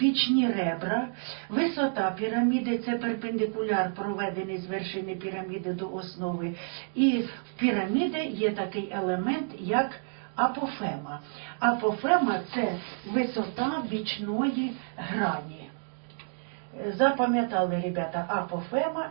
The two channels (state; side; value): silent; left; digital silence